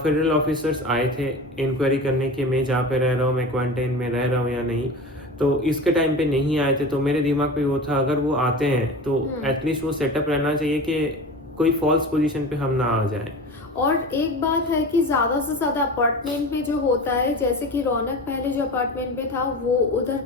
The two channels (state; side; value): normal; both; correlation 0.32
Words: ऑफिसर्स आए थे इंक्वायरी करने के मैं जहाँ पे रह रहा हूँ, मैं क्वारंटाइन में रह रहा हूँ या नहीं. तो इसके टाइम पे नहीं आए थे, तो मेरे दिमाग पे वो था अगर वो आते हैं तो एटलीस्ट वो सेटअप रहना चाहिए कि कोई फॉल्स पोजीशन पे हम ना आ जाए. और एक बात है कि ज़्यादा से ज़्यादा अपार्टमेंट में जो होता है, जैसे कि रौनक पहले जो अपार्टमेंट में था वो उधर